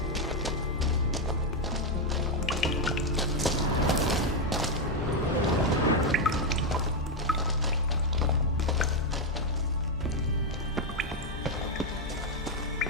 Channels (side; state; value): both; normal; correlation 0.03